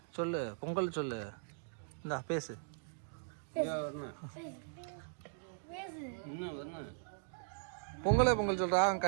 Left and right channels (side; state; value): left; silent; digital silence